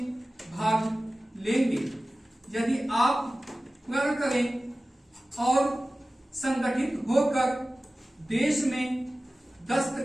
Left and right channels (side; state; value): both; normal; correlation 0.96